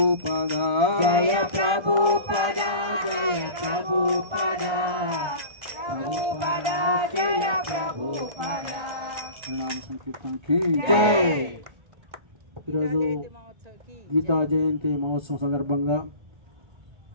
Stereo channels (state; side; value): late; left; 1.3 ms